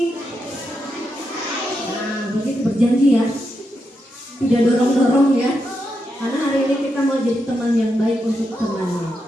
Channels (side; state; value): both; normal; correlation 0.84